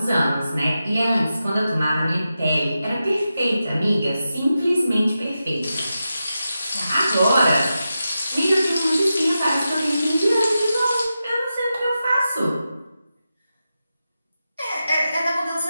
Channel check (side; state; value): both; inverted; correlation -0.90